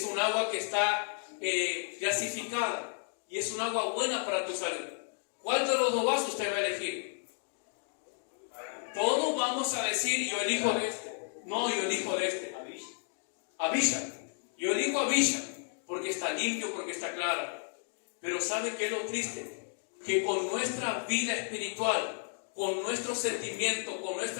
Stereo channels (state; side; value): silent; right; 56 dB below the other